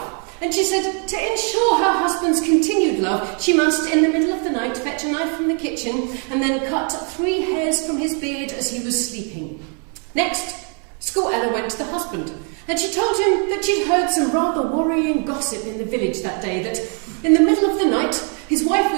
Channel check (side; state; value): left; quieter; 39.9 dB